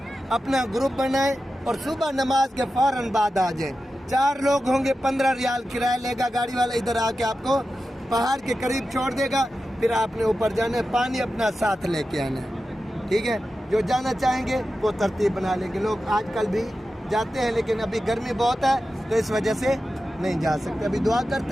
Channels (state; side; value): normal; both; correlation 0.92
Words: اپنا گروپ بنائیں اور صبح نماز کے فوراً بعد آ جائیں۔ 4 لوگ ہوں گے، 15 ریال کرایہ لے گا گاڑی والا، ادھر آ کے آپ کو پہاڑ کے قریب چھوڑ دے گا، پھر آپ نے اوپر جانا ہے، پانی اپنا ساتھ لے کے آنا ہے، ٹھیک ہے۔ جو جانا چاہیں گے وہ ترتیب بنا لیں گے۔ لوگ آج کل بھی جاتے ہیں لیکن ابھی گرمی بہت ہے تو اس وجہ سے نہیں جا سکتے۔ ابھی دعا